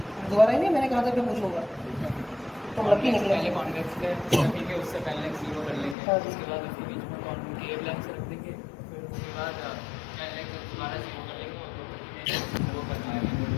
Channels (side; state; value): right; drops out; at 6.0 s